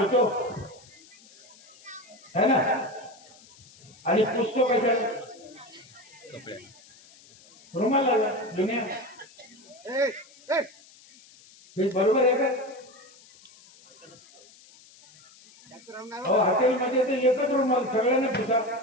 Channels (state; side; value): noise; left; hiss, 24 dB below the sound